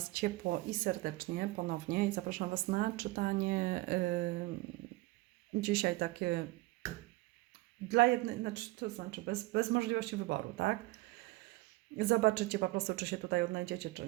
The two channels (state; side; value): quieter; left; 20.4 dB